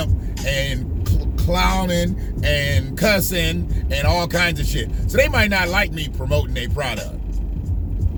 and clowning and cussing and all kinds of shit. So they might not like me promoting their product.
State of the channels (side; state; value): both; identical; correlation 1.00